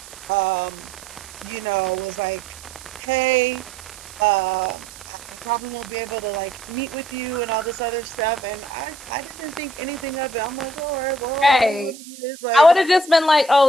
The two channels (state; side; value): noise; right; hiss, 17 dB below the sound